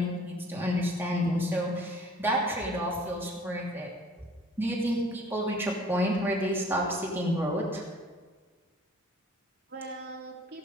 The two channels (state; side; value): normal; both; correlation 0.52